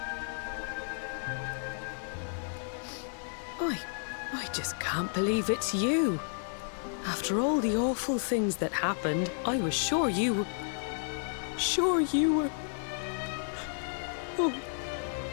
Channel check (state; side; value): silent; right; digital silence